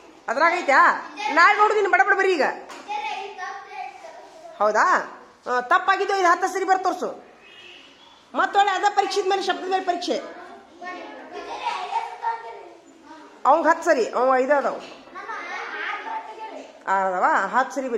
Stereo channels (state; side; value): identical; both; correlation 1.00